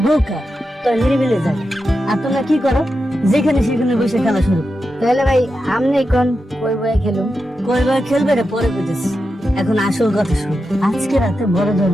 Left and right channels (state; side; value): normal; both; correlation 0.89